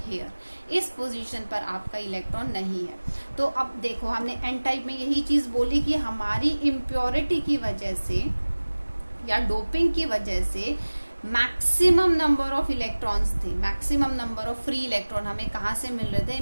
इस पोजीशन पर आपका इलेक्ट्रॉन नहीं है। तो अब देखो हमने एन टाइप में यही चीज बोली कि हमारी इम्प्योरिटी की वजह से या डोपिंग की वजह से मैक्सिमम नंबर ऑफ इलेक्ट्रॉन्स थे, maximum number of free electron हमें कहाँ से मिल रहे थे,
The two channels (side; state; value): both; inverted; correlation -1.00